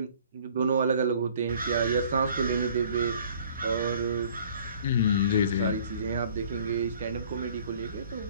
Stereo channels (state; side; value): inverted; both; correlation -0.53